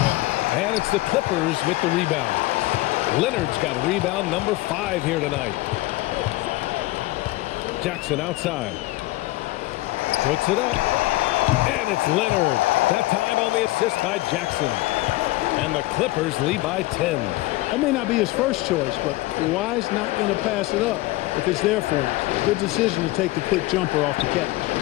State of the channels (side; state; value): right; quieter; 19.3 dB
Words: And it's the Clippers with the rebound. Leonard's got rebound number 5 here tonight. Jackson outside. Puts it up. And it's Leonard. That time on the assist by Jackson. And the Clippers lead by 10. That may not be his first choice, but Kawhi's not going to pass it up if it's there for him. Good decision to take the quick jumper off the catch.